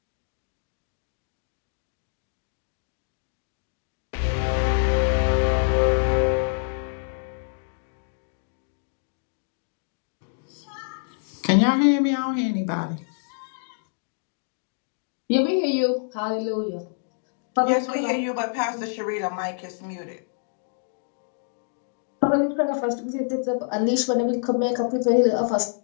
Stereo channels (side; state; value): right; silent; digital silence